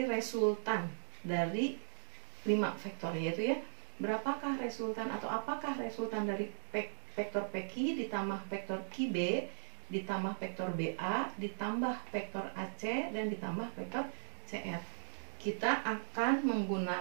resultan dari 5 vektor, yaitu ya, berapakah resultan atau apakah resultan dari vektor PQ ditambah vektor QB ditambah vektor BA ditambah vektor AC dan ditambah vektor CR. Kita akan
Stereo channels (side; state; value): left; silent; digital silence